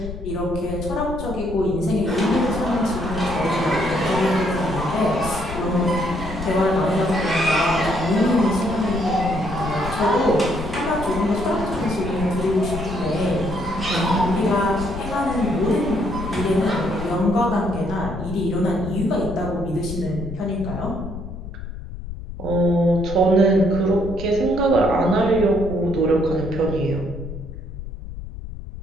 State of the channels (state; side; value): noise; left; rumble, 10 dB below the sound